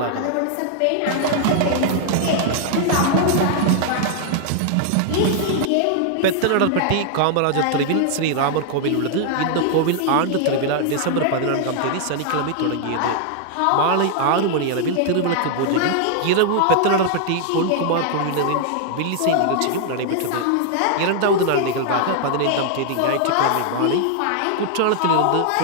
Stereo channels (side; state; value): both; different; correlation 0.00